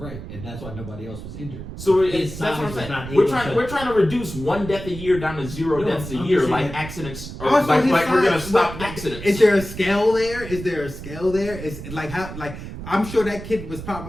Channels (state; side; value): noise; right; rumble, 11 dB below the sound